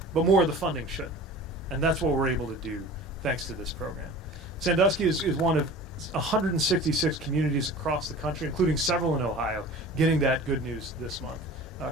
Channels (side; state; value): both; normal; correlation 0.40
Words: but more of the funding should. And that's what we're able to do thanks to this program. Sandusky is one of 166 communities across the country, including several in Ohio, getting that good news this month,